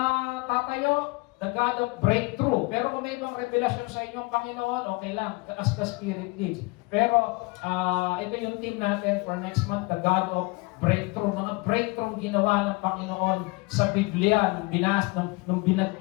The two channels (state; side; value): quieter; right; 26.3 dB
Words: tatayo, the God of breakthrough. Pero kung may ibang revelasyon sa inyong Panginoon, okay lang, as the Spirit leads. Pero ito yung team natin for next month, the God of breakthrough. Mga breakthrough ginawa ng Panginoon sa Biblia. Nung